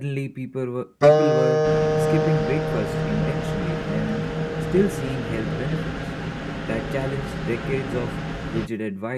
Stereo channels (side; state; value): both; identical; correlation 1.00